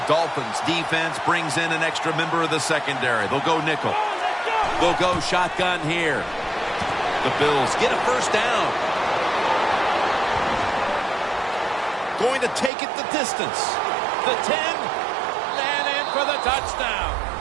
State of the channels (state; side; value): drops out; left; at 12.7 s